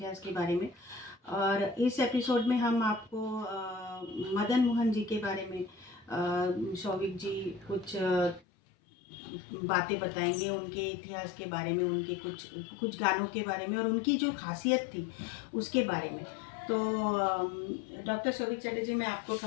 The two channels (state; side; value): drops out; right; at 8.4 s